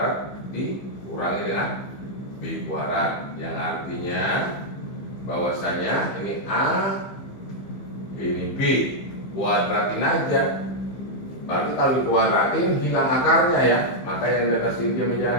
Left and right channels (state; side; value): late; right; 15 ms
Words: dikurangi dengan B kuadrat, yang artinya bahwasanya ini A ini B, kuadratin aja. Berarti kalau dikuadratin hilang akarnya ya, maka yang di atas ini dia